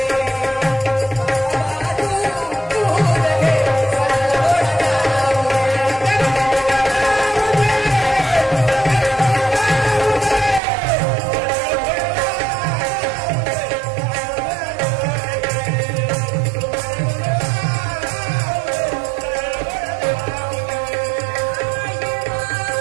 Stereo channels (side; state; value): left; drops out; at 10.6 s